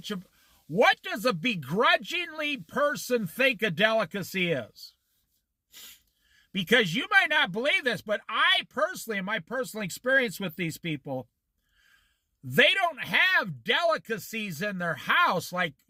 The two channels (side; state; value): both; identical; correlation 1.00